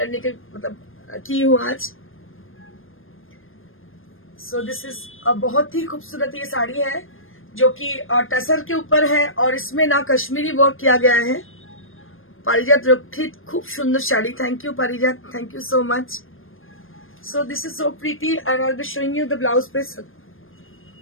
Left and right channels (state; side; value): late; right; 0.59 ms